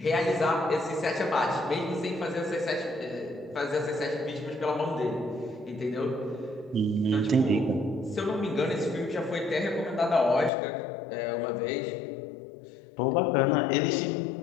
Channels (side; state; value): right; drops out; at 10.5 s